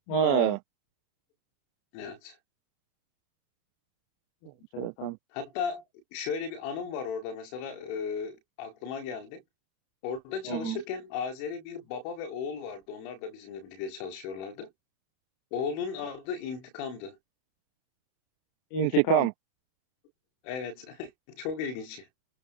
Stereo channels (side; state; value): right; late; 31 ms